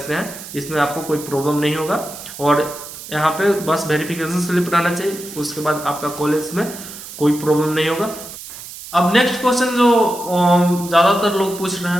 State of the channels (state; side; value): noise; right; hiss, 13 dB below the sound